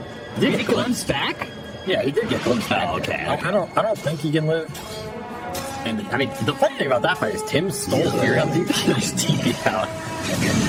Did he glimpse back? Yeah, he did get glimpsed back. Oh, okay. I don't think he can live. And I mean, the funny thing about that fight is Tim stole Fury on DPC and just TP'd out.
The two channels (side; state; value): both; identical; correlation 1.00